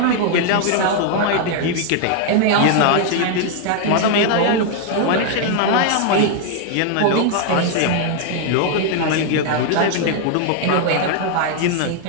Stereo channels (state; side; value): different; both; correlation 0.00